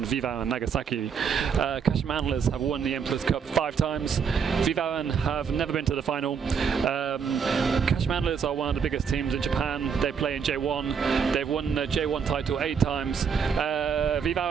V-Varen Nagasaki. Kashima Antlers have won the Emperor's Cup 5 times. V-Varen have never been to the final. Kashima Antlers are one of the biggest teams in Japan. They play in J1. They've won the J1 title 8 times.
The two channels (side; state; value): left; quieter; 6.6 dB